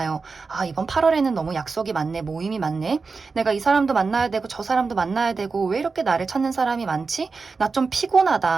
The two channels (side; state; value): left; quieter; 4.5 dB